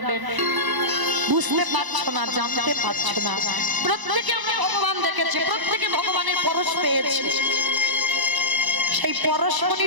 বুঝতে পারছো না, জানতে পারছো না, প্রত্যেকে আমরা ভগবান দেখেছি, প্রত্যেকে ভগবানের পরশ পেয়েছি, সেই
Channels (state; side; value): late; left; 1.0 ms